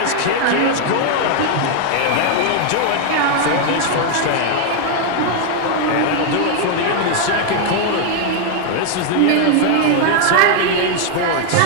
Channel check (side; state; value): both; different; correlation 0.00